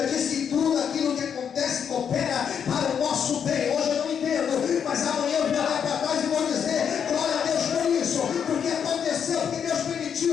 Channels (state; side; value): quieter; right; 7.7 dB